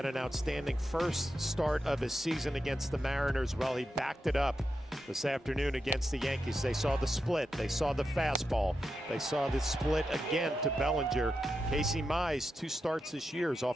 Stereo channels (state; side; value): normal; both; correlation 0.88